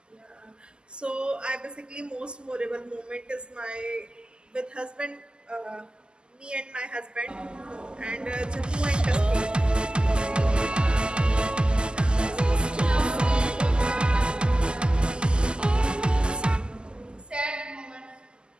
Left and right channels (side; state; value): left; late; 0.048 ms